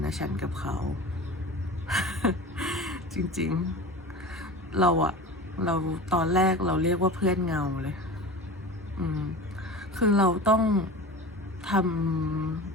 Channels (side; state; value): both; normal; correlation 0.34